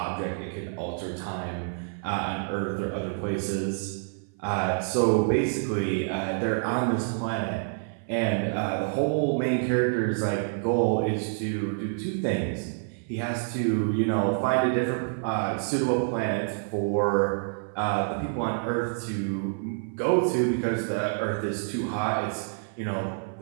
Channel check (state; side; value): silent; left; 57 dB below the other